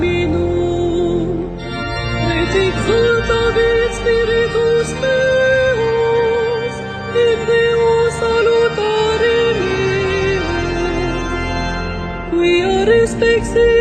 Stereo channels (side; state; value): both; identical; correlation 1.00